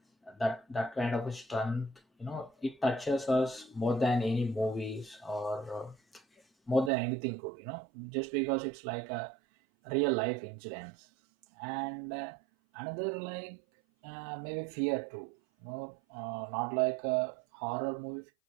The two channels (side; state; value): left; drops out; at 6.9 s